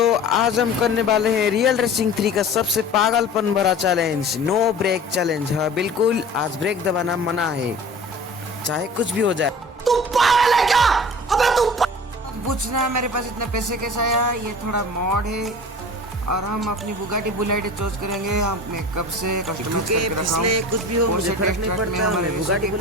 आज हम करने वाले हैं रियल रेसिंग 3 का सबसे पागलपन भरा चैलेंज, नो ब्रेक चैलेंज। हाँ बिल्कुल, आज ब्रेक दबाना मना है, चाहे कुछ भी हो जाए। तू पागल है क्या? अबे तू पूछना मेरे पास इतने पैसे कैसे आया? ये थोड़ा मॉड है और हम अपनी बुगाटी बुलेट चूज करेंगे। हम कब से कस्टमर करके रखा हूं, कुछ भी हो मुझे फर्क नहीं पड़ता। मैं बुगाटी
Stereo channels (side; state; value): both; normal; correlation 0.40